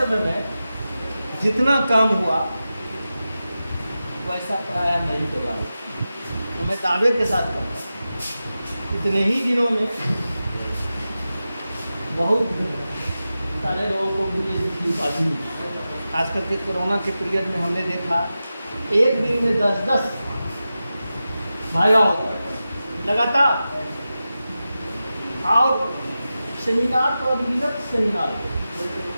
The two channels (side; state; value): both; inverted; correlation -0.93